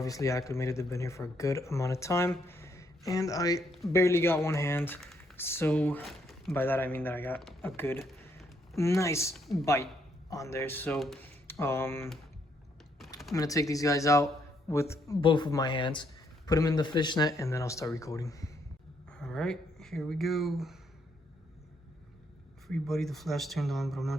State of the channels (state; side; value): normal; both; correlation 0.73